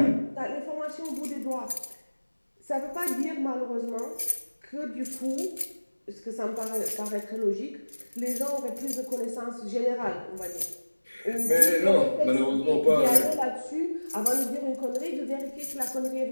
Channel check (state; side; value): inverted; both; correlation -1.00